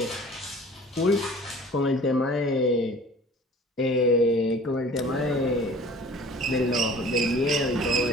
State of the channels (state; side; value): normal; both; correlation 0.46